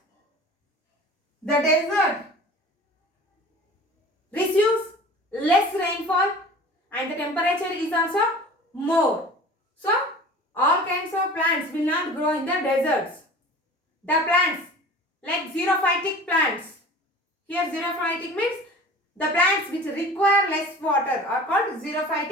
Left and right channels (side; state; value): both; normal; correlation 0.41